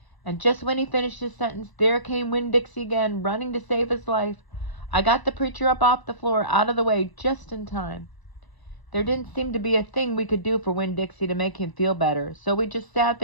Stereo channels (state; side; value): late; right; 1.0 ms